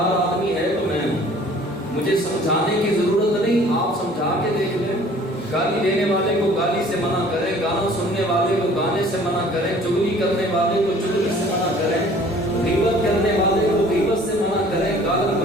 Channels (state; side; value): normal; both; correlation 0.51